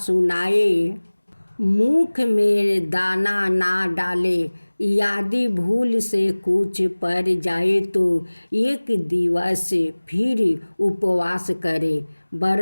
मुख में दाना ना डाले। यदि भूल से कुछ पड़ जाए तो एक दिवस फिर उपवास करे।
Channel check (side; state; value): both; inverted; correlation -1.00